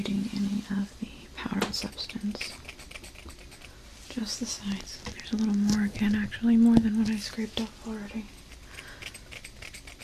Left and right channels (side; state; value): both; identical; correlation 1.00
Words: any of the powdered substance. Just the sides. There's a little more again, actually, more than what I scraped off already.